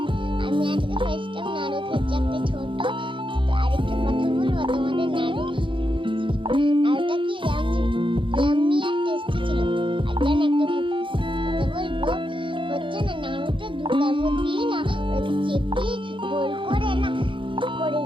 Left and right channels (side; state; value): left; late; 0.24 ms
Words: আমি আজকে ফার্স্ট টাইম নাড়ু খেয়েছি একটা ছোট। আরেকটা কথা বলবো তোমাদের, নাড়ুটা কি